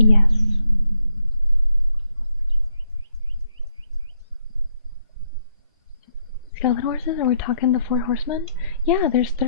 Skeleton horses? Are we talking the 4 horsemen? Yeah, there's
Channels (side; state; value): both; inverted; correlation -0.74